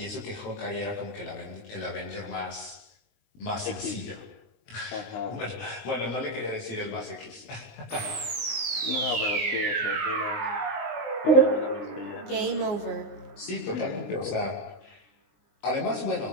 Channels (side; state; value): right; late; 19 ms